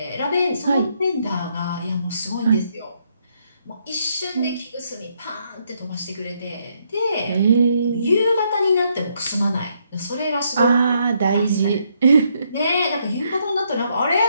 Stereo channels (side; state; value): both; inverted; correlation -0.74